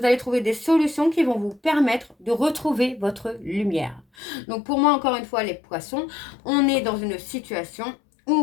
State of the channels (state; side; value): drops out; right; at 4.0 s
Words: allez trouver des solutions qui vont vous permettre de retrouver votre lumière. Donc, pour moi, encore une fois, les poissons, on est dans une situation